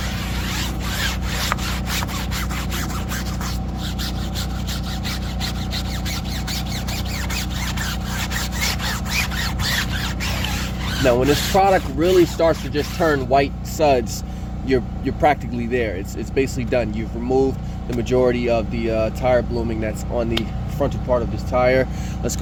Now, when this product really starts to just turn white suds, you're practically there. It's basically done. You've removed the majority of the tire blooming that's on the frontal part of this tire. Let's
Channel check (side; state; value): both; identical; correlation 1.00